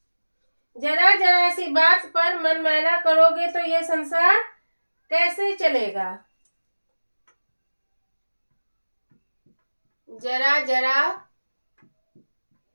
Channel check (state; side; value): inverted; both; correlation -1.00